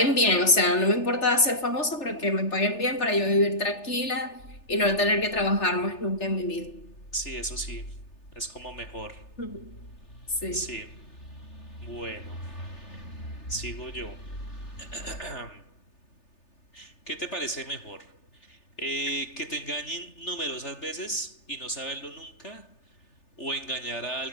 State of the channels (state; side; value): late; right; 3.3 ms